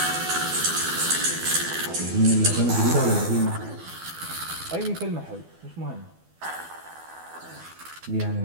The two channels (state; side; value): late; left; 12 ms